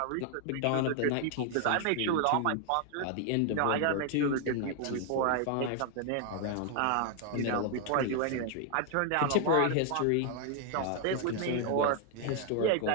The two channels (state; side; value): different; both; correlation 0.00